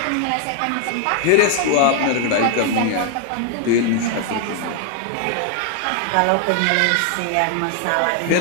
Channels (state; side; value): different; both; correlation 0.00